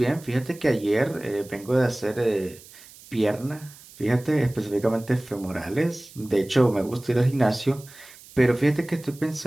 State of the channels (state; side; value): noise; right; hiss, 21 dB below the sound